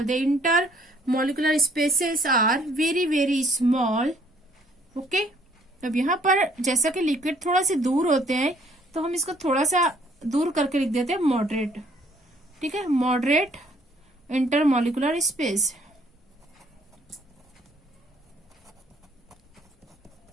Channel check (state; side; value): normal; both; correlation 0.62